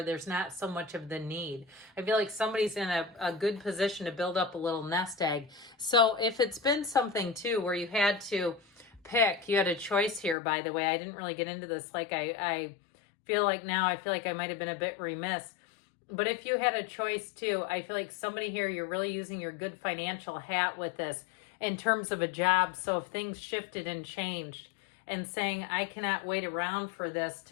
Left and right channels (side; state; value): right; drops out; at 10.4 s